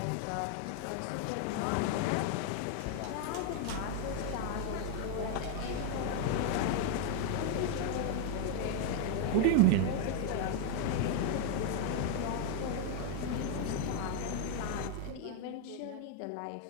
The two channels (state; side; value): different; both; correlation 0.00